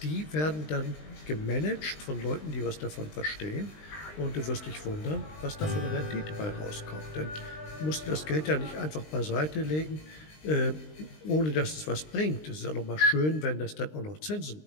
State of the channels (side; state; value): right; late; 20 ms